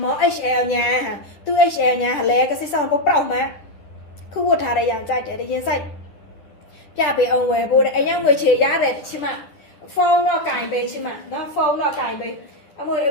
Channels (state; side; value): late; right; 10 ms